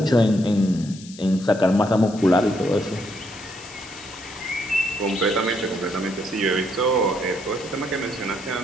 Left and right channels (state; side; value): noise; left; hiss, 18 dB below the sound